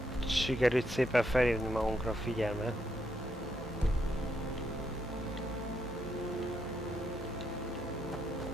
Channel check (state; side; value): normal; both; correlation 0.78